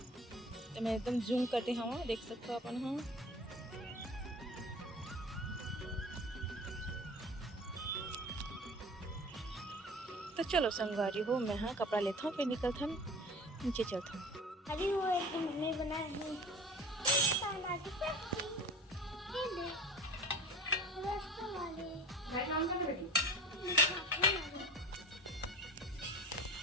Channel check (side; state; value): both; normal; correlation 0.39